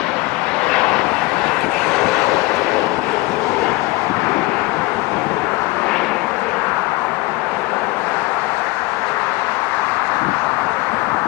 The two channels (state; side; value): quieter; right; 21.5 dB